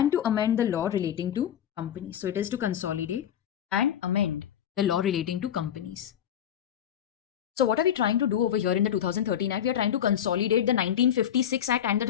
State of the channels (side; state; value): right; quieter; 9.8 dB